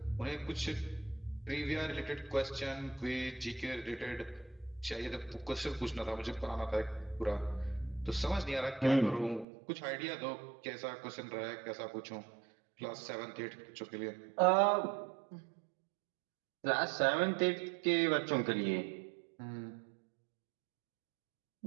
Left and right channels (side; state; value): left; drops out; at 9.5 s